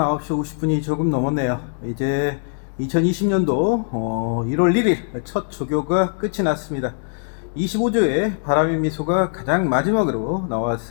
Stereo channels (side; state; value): right; silent; digital silence